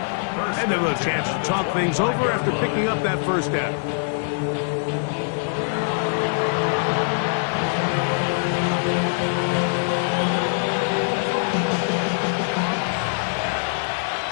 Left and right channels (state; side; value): silent; right; digital silence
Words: And they'll have a chance to talk things over after picking up that first down.